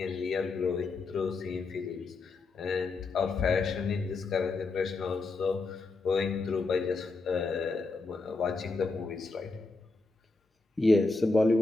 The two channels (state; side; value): quieter; right; 3.7 dB